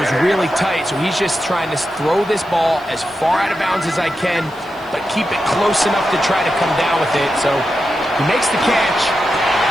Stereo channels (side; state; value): right; noise; hiss, 28 dB below the sound